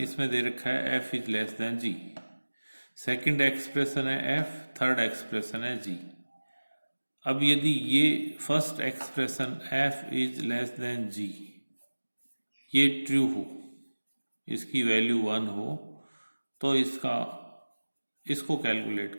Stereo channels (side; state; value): both; inverted; correlation -1.00